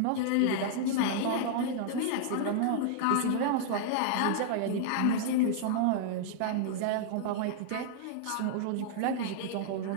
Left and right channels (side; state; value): both; different; correlation -0.01